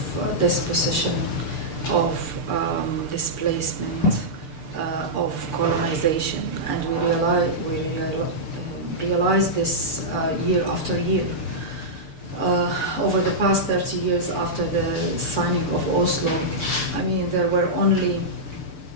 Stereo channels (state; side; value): late; right; 6.7 ms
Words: dispossession, of displacement, of colonization, and we realize this year after year. Over the past 30 years after the signing of Oslo, I mean, there were only